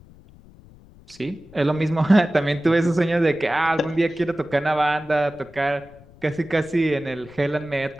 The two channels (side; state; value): left; noise; rumble, 24 dB below the sound